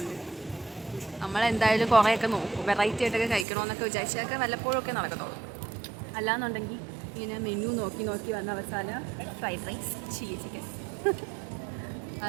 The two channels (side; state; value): left; drops out; at 3.5 s